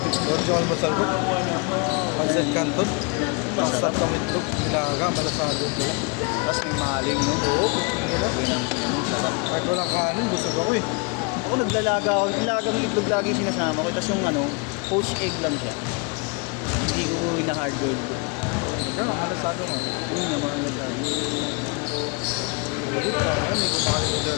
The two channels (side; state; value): right; quieter; 31.0 dB